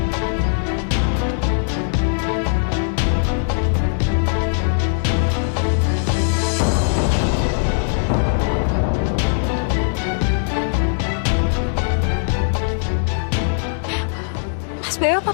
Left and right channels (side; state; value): right; silent; digital silence